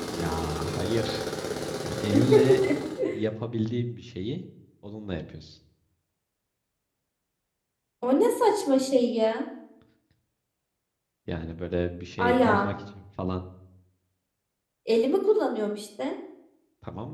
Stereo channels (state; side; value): identical; both; correlation 1.00